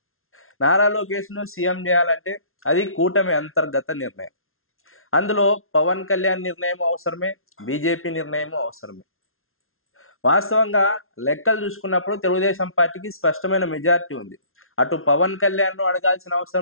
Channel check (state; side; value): late; right; 0.61 ms